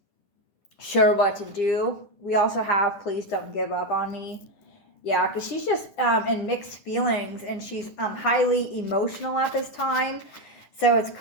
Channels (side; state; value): right; late; 9.9 ms